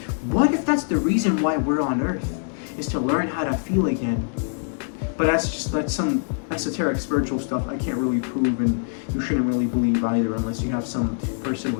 What if that's the reason why we're on Earth, is to learn how to feel again? But that's some esoteric spiritual stuff I can't really prove, and you shouldn't really believe either unless you have some personal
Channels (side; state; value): right; silent; digital silence